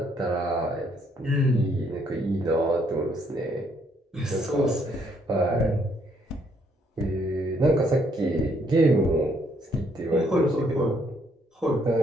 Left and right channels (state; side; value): normal; both; correlation 0.70